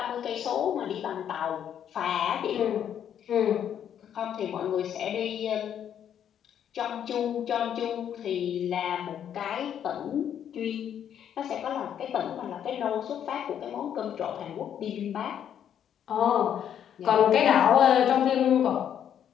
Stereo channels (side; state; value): right; quieter; 9.4 dB